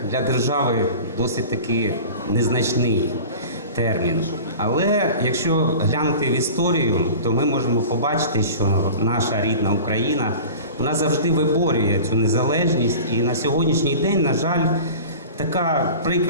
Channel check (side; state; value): both; inverted; correlation -0.37